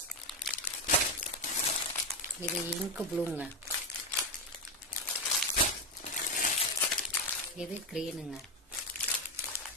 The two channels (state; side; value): normal; both; correlation 0.10